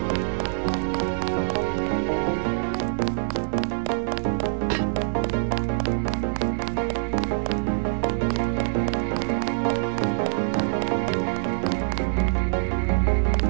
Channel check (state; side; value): silent; left; digital silence